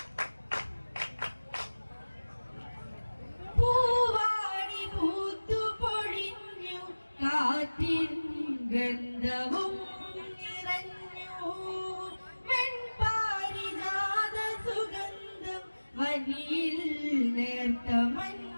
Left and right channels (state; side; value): inverted; both; correlation -1.00